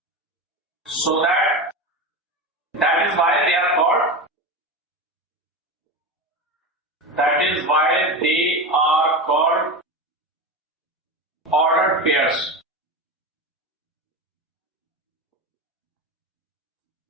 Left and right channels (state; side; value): normal; both; correlation 0.22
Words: so that is why they are called ordered pairs.